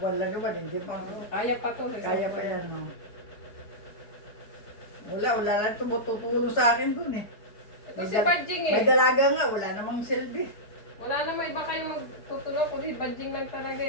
lang naman, hindi pa. Kaya pa to. Kaya pa yan, no? Wala lang tumutulong sa akin dun eh. Ito si Badjing eh. May dalaga nga, wala namang silbi. Wala na may iba kayong magtutulong kundi Badjing lang talaga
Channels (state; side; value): late; right; 4.7 ms